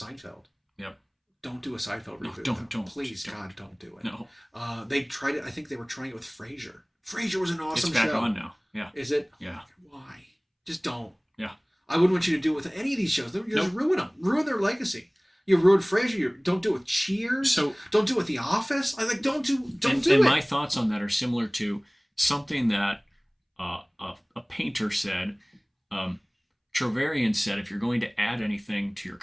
Yep. Don't do a Seinfeld reboot. No, don't. Please, God, don't do it. No. They tried it. I think they were trying it with Frasier. Frasier was an awesome show. It's back on now. Yeah. Is it? Yeah. Why? Just don't. Yeah. I wouldn't want you to do it with any of these shows. You just ruin them. Ruin their legacy. You ruined Frasier. Don't do it with Cheers. So don't do it with The Office. Don't do it. And my thoughts on that are similar to something that a painter said. Trovarian said, if you're going to add anything to your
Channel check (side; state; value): both; identical; correlation 1.00